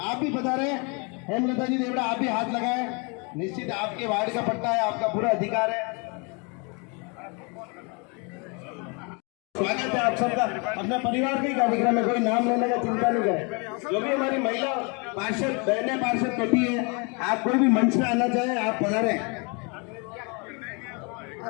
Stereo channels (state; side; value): quieter; right; 32.5 dB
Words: भी बता रहे हैं। हेमलता जी देवड़ा आप भी हाथ लगाए। निश्चित आपके वार्ड का पट्टा है, आपका पूरा अधिकार है। स्वागत है आप सबका। अपने परिवार के कार्यक्रम में कोई नाम लेने का चिंता नहीं करें। जो भी हमारी महिला पार्षद बहने पार्षद बैठी है, आप कोई भी मंच में आना चाहे आप पधारें।